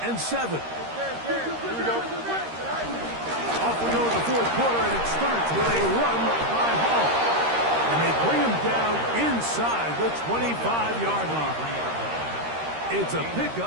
and 7. Here we go. Off we go to the fourth quarter, and it starts with a run by Hall. And they bring him down inside the 25-yard line. It's a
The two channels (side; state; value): left; late; 13 ms